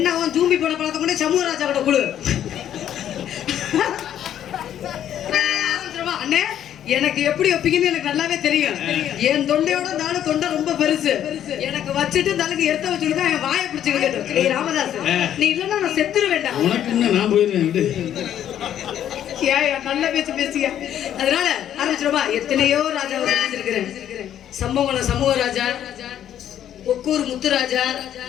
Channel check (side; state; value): right; quieter; 10.6 dB